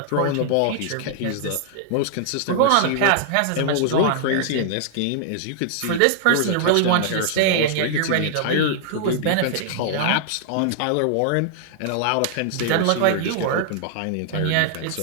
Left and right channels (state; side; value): different; both; correlation -0.01